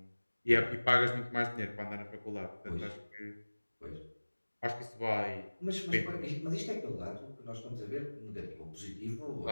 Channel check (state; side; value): inverted; both; correlation -1.00